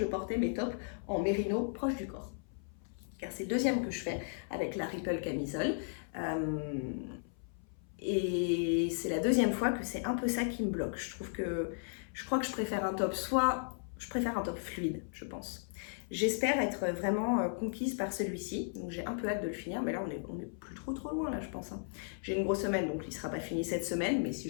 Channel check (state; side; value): silent; right; 54 dB below the other